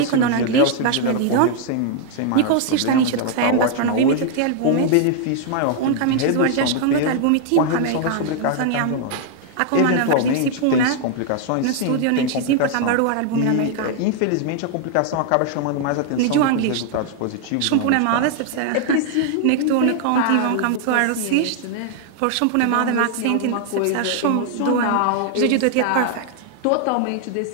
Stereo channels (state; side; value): different; both; correlation 0.00